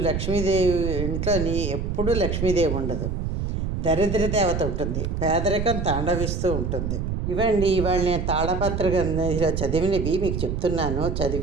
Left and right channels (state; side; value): noise; right; rumble, 2 dB below the sound